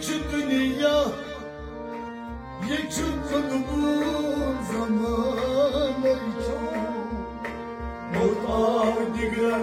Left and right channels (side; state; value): both; identical; correlation 1.00